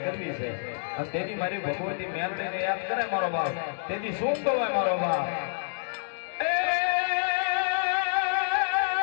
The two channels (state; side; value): silent; right; digital silence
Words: છે અને તેની મારી ભગવતી મેલડીને યાદ કરે મારો બાપ તેથી શું કહેવાય મારો બાપ